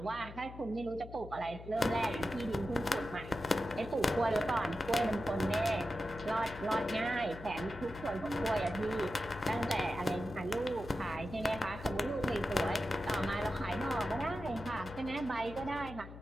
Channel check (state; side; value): noise; left; hum, 14 dB below the sound